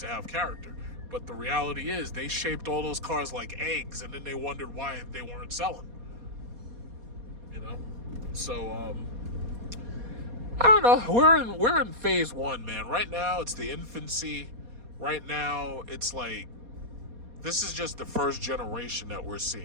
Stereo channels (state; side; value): late; left; 4.2 ms